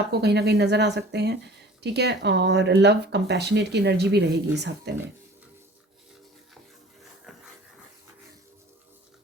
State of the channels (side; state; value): both; normal; correlation 0.46